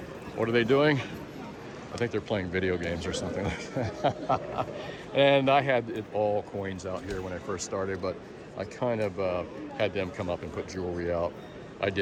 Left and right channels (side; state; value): both; identical; correlation 1.00